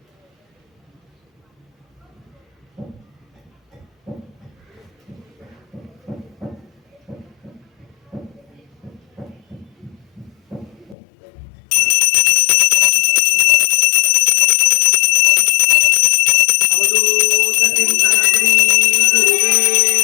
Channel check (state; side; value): drops out; right; at 11.0 s